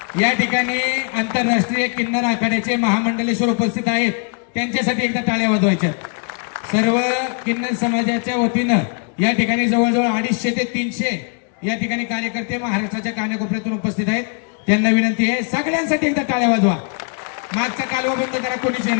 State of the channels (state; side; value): quieter; right; 39.9 dB